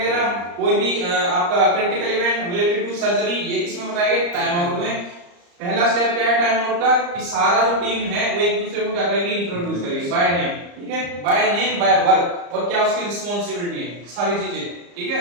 कोई भी आपका critical event related to surgery, ये किसमें बताएंगे, टाइम आउट में। पहला स्टेप क्या है टाइम आउट का, कि सारा जो टीम है वो एक दूसरे को क्या करेगी, इंट्रोड्यूस करेगी बाय नेम, ठीक है, बाय नेम बाय वर्क, और क्या उसकी रिस्पांसिबिलिटी है, सारी चीजें, ठीक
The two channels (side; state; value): left; late; 34 ms